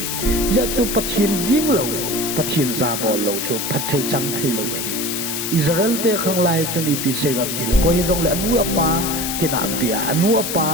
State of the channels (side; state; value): left; noise; hiss, 3 dB below the sound